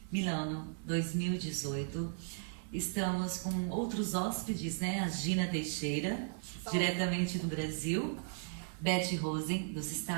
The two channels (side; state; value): left; silent; 54 dB below the other